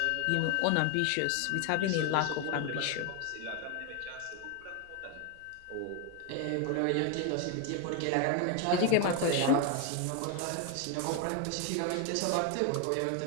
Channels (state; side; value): different; both; correlation 0.01